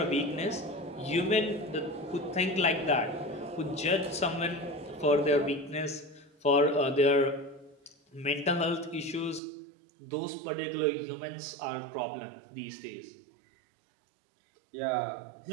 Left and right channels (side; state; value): left; drops out; at 9.4 s